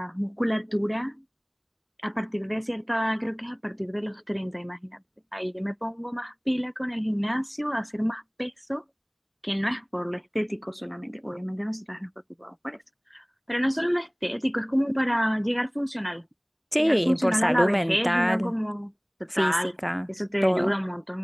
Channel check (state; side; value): identical; both; correlation 1.00